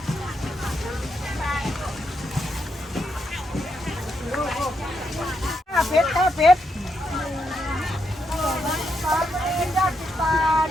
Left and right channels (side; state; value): both; normal; correlation 0.81